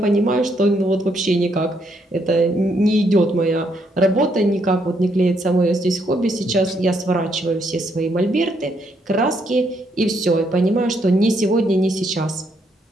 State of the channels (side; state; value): both; normal; correlation 0.74